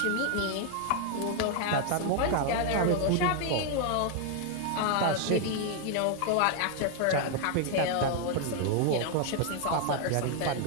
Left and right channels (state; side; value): different; both; correlation 0.00